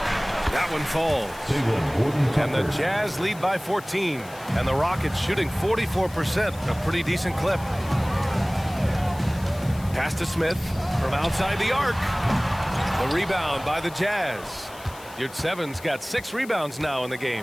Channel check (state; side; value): noise; left; hiss, 20 dB below the sound